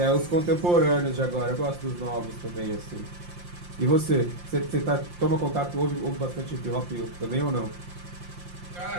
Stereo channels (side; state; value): left; late; 5.7 ms